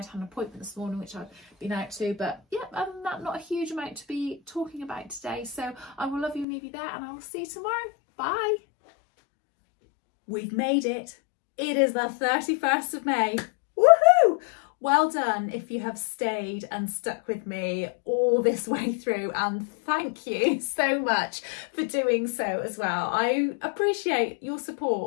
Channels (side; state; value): right; drops out; at 6.5 s